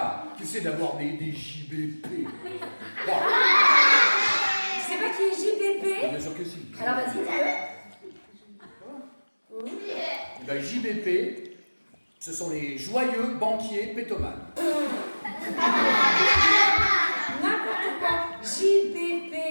Tu sais d'avoir des JBP. Bon. Tu sais pas qui est JBP? Bien sûr que si. Alors vas-y, dis-le. Eh ben, JBP, ce sont les joyeux banquiers pétomanes. N'importe quoi. JBP,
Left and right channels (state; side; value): inverted; both; correlation -1.00